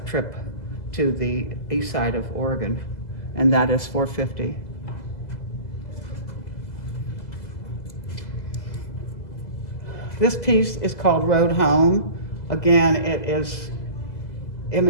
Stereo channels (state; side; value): late; right; 2.0 ms